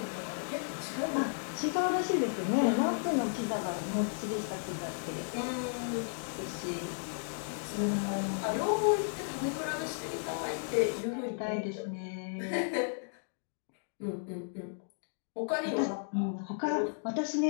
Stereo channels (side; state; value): right; silent; digital silence